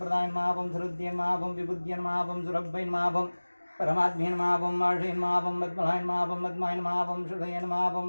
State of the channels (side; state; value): both; inverted; correlation -1.00